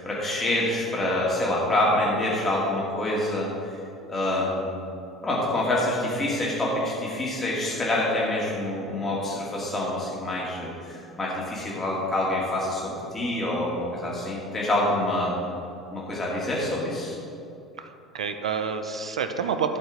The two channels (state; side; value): normal; both; correlation 0.44